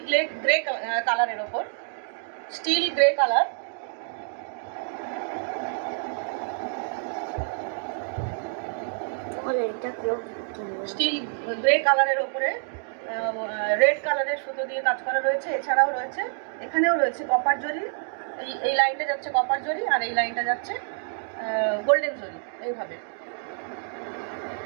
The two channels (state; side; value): silent; left; 60 dB below the other